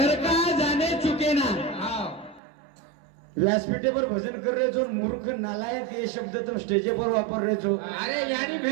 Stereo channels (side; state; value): left; drops out; at 2.4 s